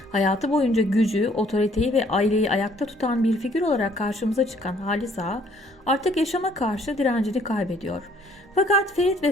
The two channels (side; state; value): both; normal; correlation 0.61